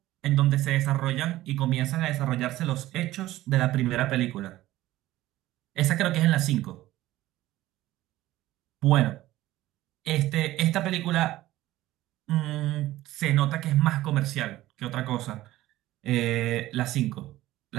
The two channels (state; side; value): quieter; left; 15.9 dB